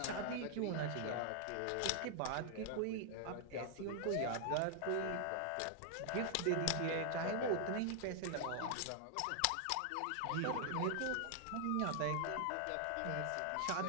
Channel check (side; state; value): both; different; correlation 0.00